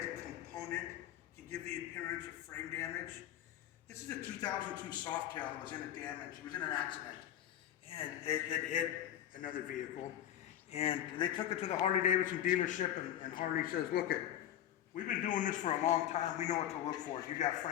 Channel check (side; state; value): right; quieter; 11.3 dB